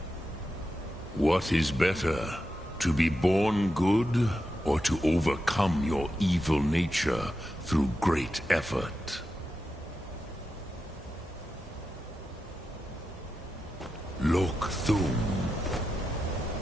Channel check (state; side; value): normal; both; correlation 0.89